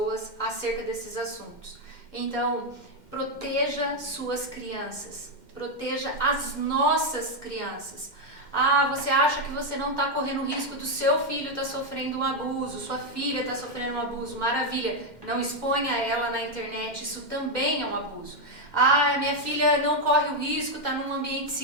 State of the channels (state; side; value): late; right; 2.1 ms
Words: acerca desses assuntos. Então, proteja suas crianças, proteja as nossas crianças. Ah, você acha que você não está correndo risco do seu filho estar sofrendo um abuso, sua filha está sofrendo um abuso, maravilha, não exponha ela na internet, isso também é um abuso. Ah, minha filha não corre o risco, está num ambiente